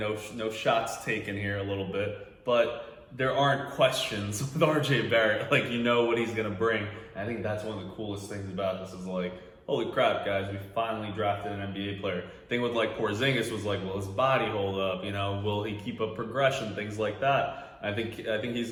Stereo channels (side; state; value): both; identical; correlation 1.00